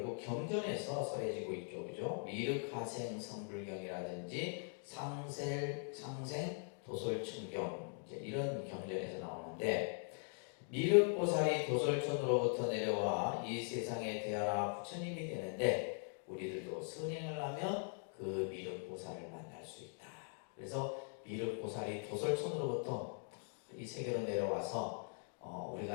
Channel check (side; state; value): right; silent; 50 dB below the other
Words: 경전에서 써해지고 있죠, 그죠? 미륵하생 성불경이라든지 상생 도솔천경 이제 이런 경전에서 나오는데, 미륵보살이 도솔천으로부터 내려와 이 세상에 태어나 부처님이 되는데 우리들도 선행을 하면 그 미륵보살을 만날 수 있다. 그래서 미륵보살이 도솔천으로부터 이 세계로 내려와서